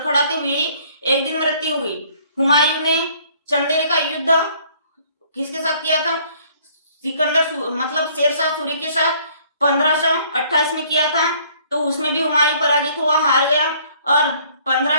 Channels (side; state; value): both; inverted; correlation -0.59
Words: हुए एक दिन मृत्यु हुई। हुमायूं ने चंदेरी का युद्ध किसके साथ किया था, मतलब शेरशाह सूरी के साथ 1528 में किया था। तो उसमें भी हुमायूं पराजित हुआ, हार गया। और